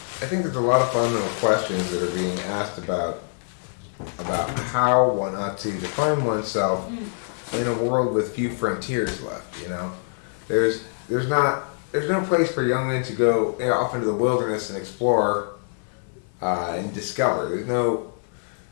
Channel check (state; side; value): silent; right; 60 dB below the other